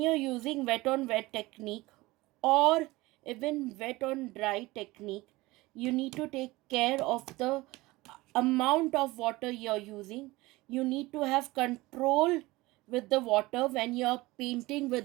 using wet on wet technique or even wet on dry technique, you need to take care of the amount of water you're using. You need to have control with the water when you're painting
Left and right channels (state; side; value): quieter; left; 20.5 dB